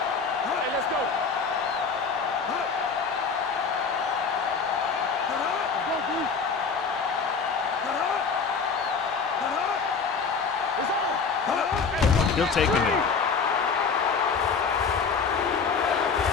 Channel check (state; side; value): quieter; right; 5.3 dB